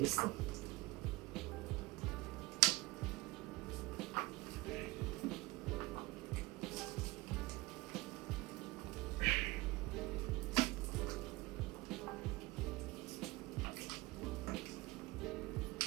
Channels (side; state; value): left; quieter; 21.2 dB